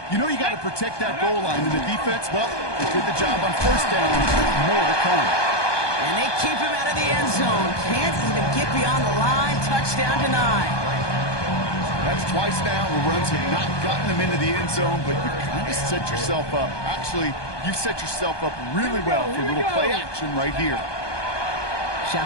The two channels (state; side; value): late; right; 1.2 ms